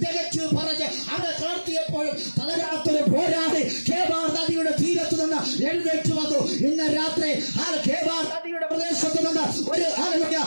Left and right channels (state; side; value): inverted; both; correlation -1.00